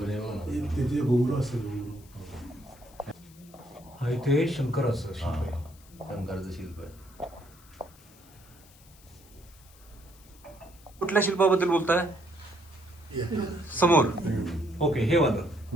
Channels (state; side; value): noise; left; hiss, 25 dB below the sound